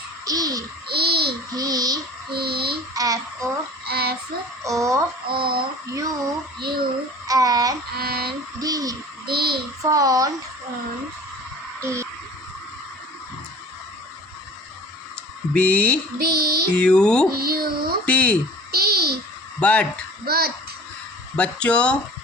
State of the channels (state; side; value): normal; both; correlation 0.44